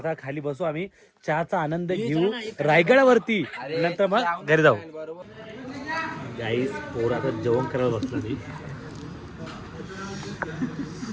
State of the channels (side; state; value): both; identical; correlation 1.00